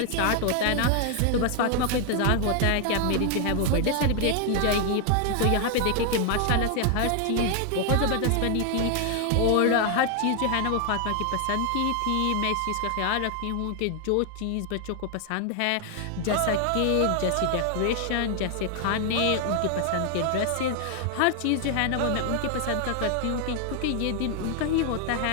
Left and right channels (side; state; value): both; different; correlation 0.00